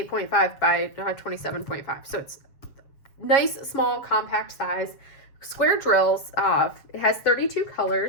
by 27.5. So it's nice, small, compact size. Square drills. It has 32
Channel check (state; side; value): late; right; 7.3 ms